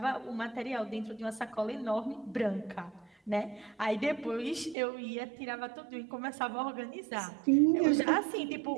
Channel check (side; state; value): left; drops out; at 4.8 s